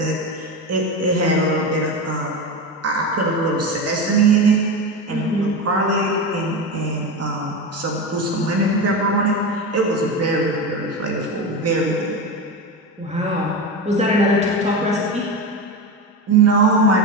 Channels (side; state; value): both; normal; correlation 0.20